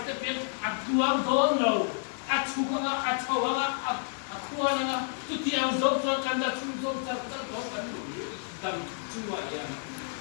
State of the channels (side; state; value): right; silent; digital silence